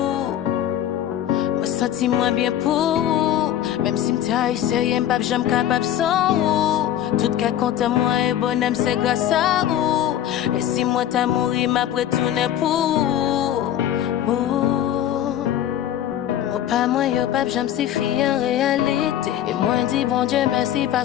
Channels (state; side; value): quieter; right; 11.3 dB